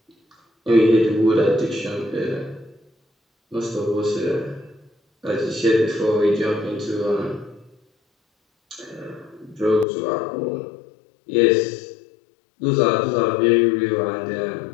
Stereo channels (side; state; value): right; drops out; at 9.9 s